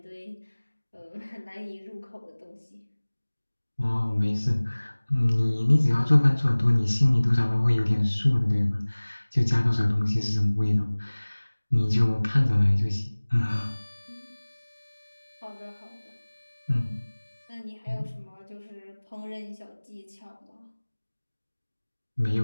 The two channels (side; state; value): both; inverted; correlation -1.00